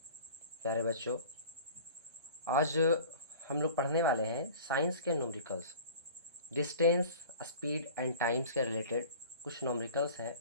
प्यारे बच्चों, आज हम लोग पढ़ने वाले हैं साइंस के numericals. Distance, speed and times के रिलेटेड कुछ न्यूमेरिकल्स हैं,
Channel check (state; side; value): inverted; both; correlation -0.42